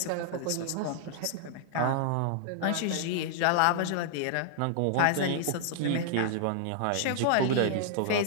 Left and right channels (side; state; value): both; different; correlation -0.01